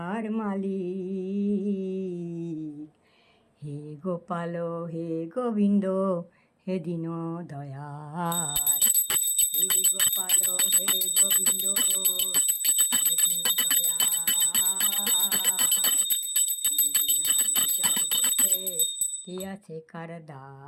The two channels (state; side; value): identical; both; correlation 1.00